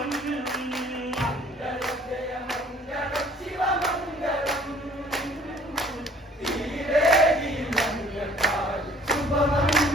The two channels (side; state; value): both; normal; correlation 0.55